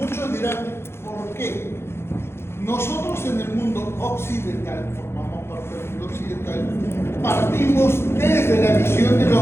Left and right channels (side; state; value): right; late; 0.12 ms